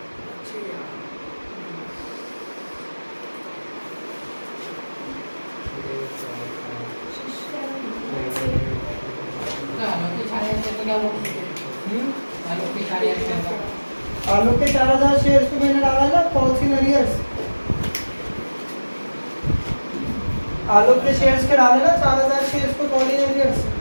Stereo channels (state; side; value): inverted; both; correlation -1.00